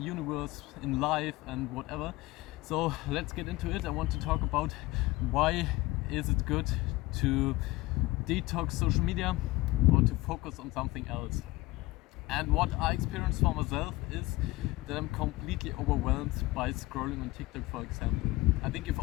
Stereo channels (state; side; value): quieter; right; 20.2 dB